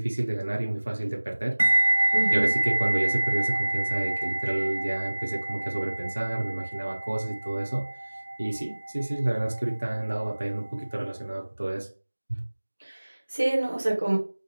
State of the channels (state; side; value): inverted; both; correlation -1.00